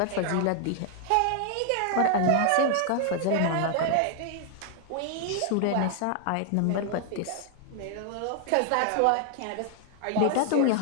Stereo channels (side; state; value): both; different; correlation 0.00